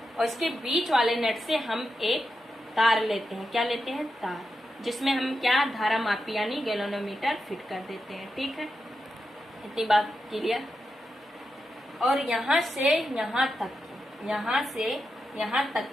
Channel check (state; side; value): normal; both; correlation 0.88